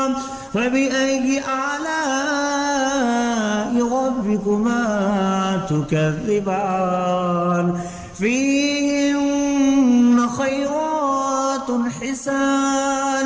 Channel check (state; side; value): identical; both; correlation 1.00